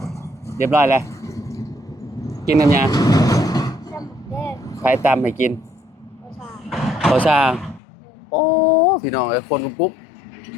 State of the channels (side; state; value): right; drops out; at 7.8 s